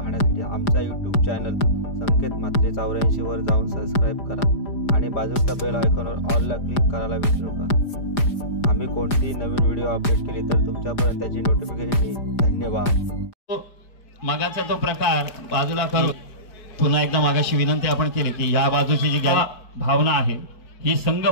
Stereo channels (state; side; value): late; right; 5.0 ms